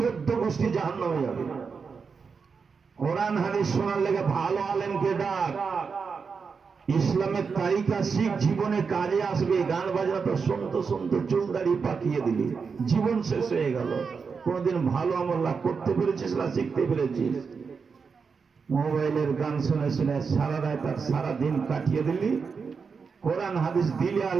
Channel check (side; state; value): left; quieter; 5.4 dB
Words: গোষ্ঠী জাহান্নামে যাবে। কোরআন হাদিস শোনার লেগে ভালো আলেমকে ডাক, ইসলামের তারিকা শিখ, জীবনে কাজে আসবে। গান বাজনা তো শুনতে শুনতে চুল দাড়ি পাকিয়ে দিলি, জীবন শেষ হয়ে গেল। কোনদিন ভালো আমল করতে পেরেছিস না শিখতে পেরেছিস? মোবাইলের গান শুনে শুনে সারা রাত আর সারা দিন কাটিয়ে দিলি। কোরআন হাদিস দিলে আর